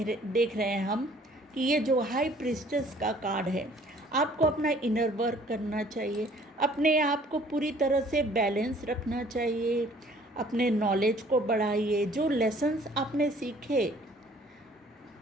रहे हैं हम कि ये जो हाई प्रीस्टेस का कार्ड है, आपको अपना इनर वर्क करना चाहिए, अपने आप को पूरी तरह से बैलेंस रखना चाहिए, अपने नॉलेज को बढ़ाइए। जो लेसन्स आपने सीखे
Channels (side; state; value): both; normal; correlation 0.56